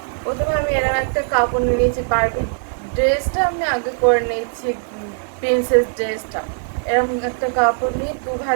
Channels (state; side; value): silent; left; digital silence